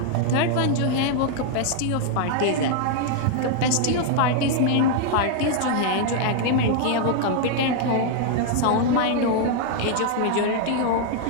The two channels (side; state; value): both; different; correlation 0.00